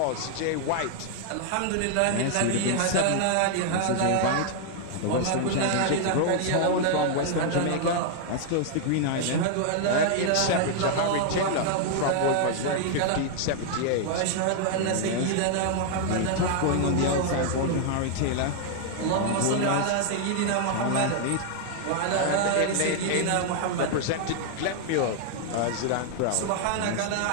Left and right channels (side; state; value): both; different; correlation 0.00